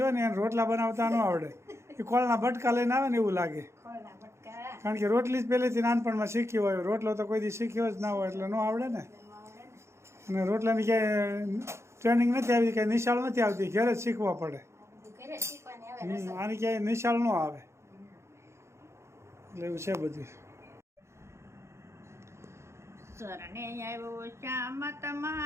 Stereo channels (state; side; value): late; left; 0.13 ms